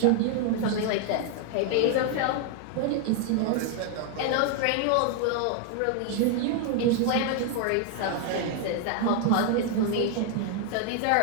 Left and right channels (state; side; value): different; both; correlation 0.00